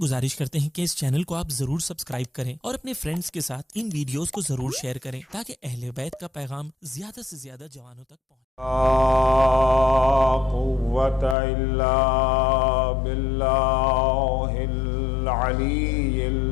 کرتے ہیں کہ اس چینل کو آپ ضرور سبسکرائب کریں اور اپنے فرینڈز کے ساتھ ان ویڈیوز کو ضرور شیئر کریں تاکہ اہل بیت کا پیغام زیادہ سے زیادہ جوانوں تک پہنچے۔ لا قوة إلا بالله العلي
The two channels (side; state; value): right; drops out; at 11.4 s